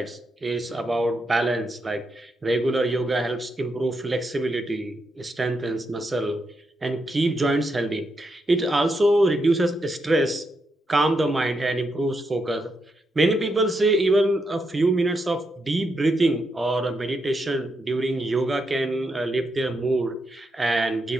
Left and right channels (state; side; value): normal; both; correlation 0.82